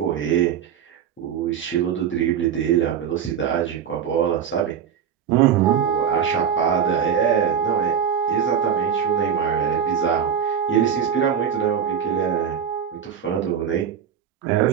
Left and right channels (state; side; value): quieter; left; 8.0 dB